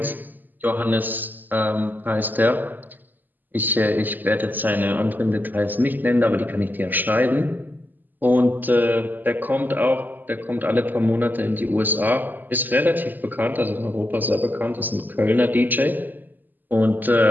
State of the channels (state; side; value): late; left; 0.088 ms